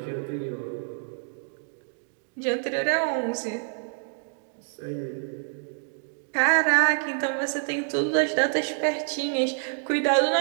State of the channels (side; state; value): left; silent; 60 dB below the other